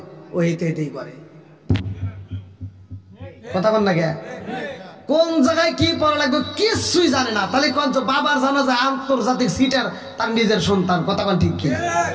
ও হেঁটেই করে। কথা বল না, কোন জায়গায় কি পড়া লাগবে কিছুই জানে না, তাহলে কোন বাবার জানাজা আন্তর্জাতিক সিটার তার নিজের সন্তান। কথা কোন ঠিক কি না?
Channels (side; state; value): both; identical; correlation 1.00